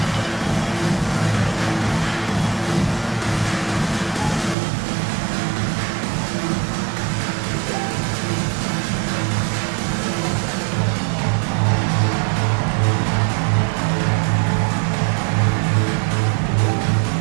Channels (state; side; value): drops out; left; at 4.5 s